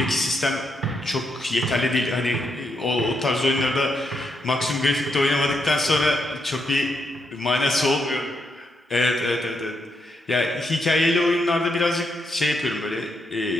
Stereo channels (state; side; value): normal; both; correlation 0.80